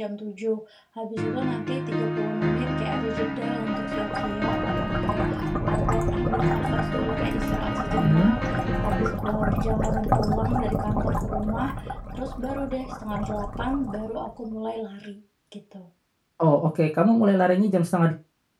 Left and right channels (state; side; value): identical; both; correlation 1.00